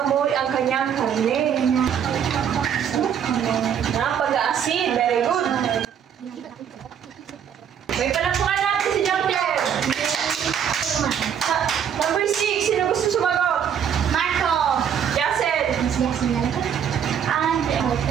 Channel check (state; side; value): quieter; left; 8.3 dB